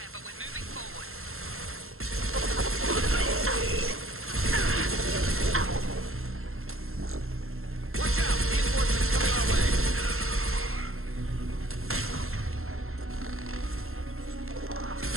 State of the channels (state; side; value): late; left; 0.62 ms